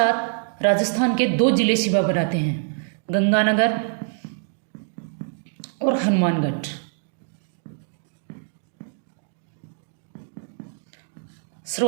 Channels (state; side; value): silent; left; 62 dB below the other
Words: राजस्थान के 2 जिले सीमा बनाते हैं, गंगानगर और हनुमानगढ़।